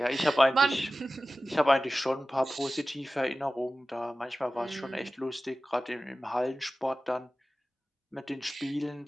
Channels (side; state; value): both; normal; correlation 0.96